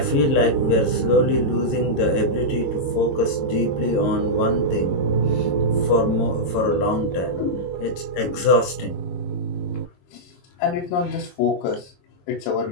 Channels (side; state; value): right; late; 22 ms